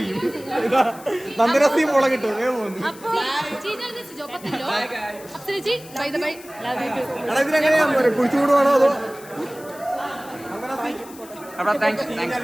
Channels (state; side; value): noise; left; hiss, 20 dB below the sound